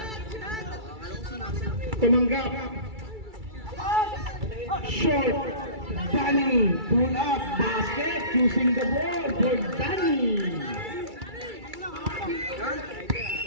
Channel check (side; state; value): left; late; 2.3 ms